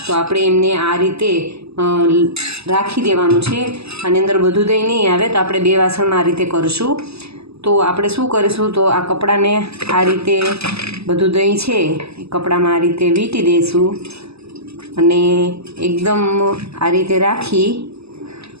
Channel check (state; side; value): late; left; 0.79 ms